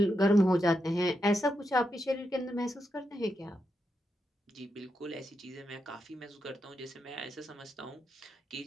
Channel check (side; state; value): both; normal; correlation 0.85